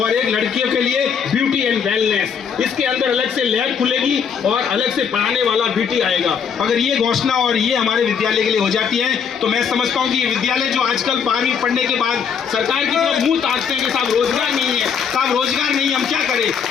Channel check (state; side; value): quieter; right; 6.9 dB